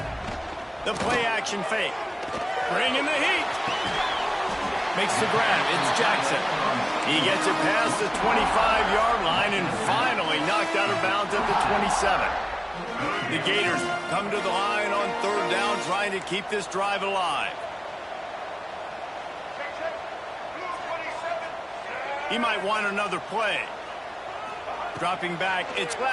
The play-action fake. Bring in the heat. Makes the grab. It's Jackson. He gets it past the 25-yard line and finally knocked out of bounds at the 27. The Gators come to the line on third down, trying to keep this drive alive. He might want another play. Dropping back, it's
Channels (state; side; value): identical; both; correlation 1.00